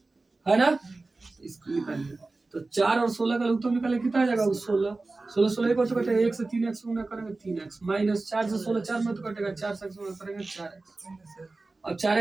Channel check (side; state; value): left; quieter; 3.4 dB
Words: है ना, इसको निकालिए। तो 4 और 16 का उत्तर निकाले कितना आ जाएगा 16, 16 16 को तो कटेगा, 1 से 3x गुना करेंगे 3x, माइनस 4 से 16 4 में तो कटेगा, 4 से गुना करेंगे 4x, अब